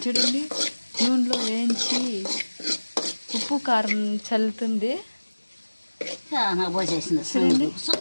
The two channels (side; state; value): both; inverted; correlation -1.00